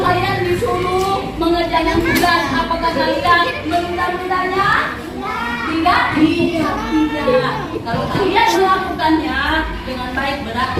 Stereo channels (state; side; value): identical; both; correlation 1.00